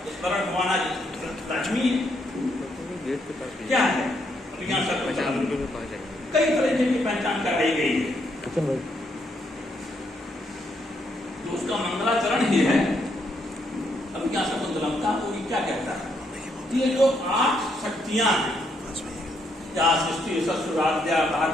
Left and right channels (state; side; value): normal; both; correlation 0.75